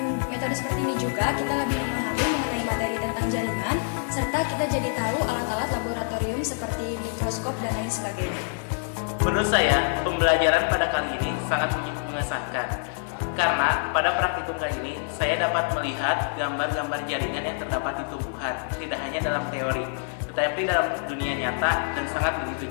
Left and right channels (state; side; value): silent; right; digital silence